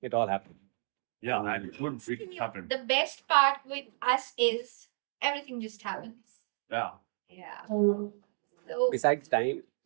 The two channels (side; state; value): left; silent; digital silence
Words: it all happened. Yeah, and it happened. The best part with us is everything just happens. Yeah. Yeah. So Besides time,